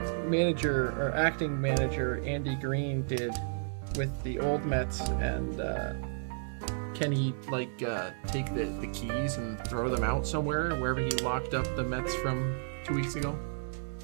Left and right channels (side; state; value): left; silent; digital silence